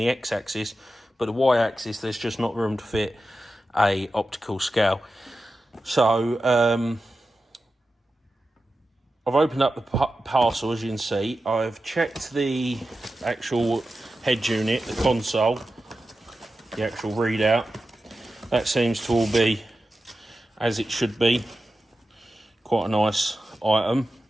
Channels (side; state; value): both; normal; correlation 0.92